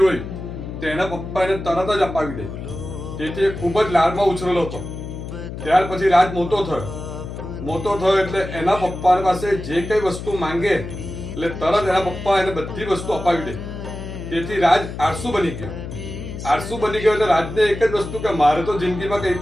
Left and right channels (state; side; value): noise; left; hum, 9 dB below the sound